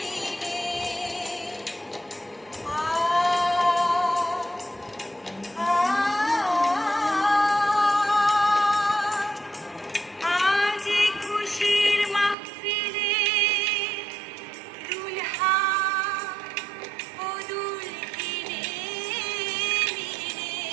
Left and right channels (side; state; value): left; drops out; at 12.4 s